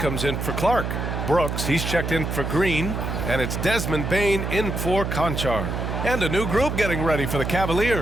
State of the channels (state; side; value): noise; right; hum, 3 dB below the sound